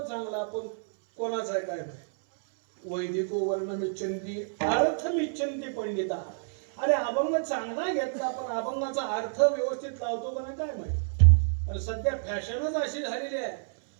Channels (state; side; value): silent; left; 59 dB below the other